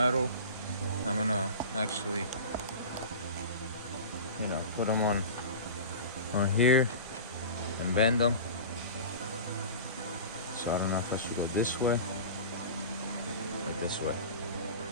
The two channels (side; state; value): both; inverted; correlation -0.34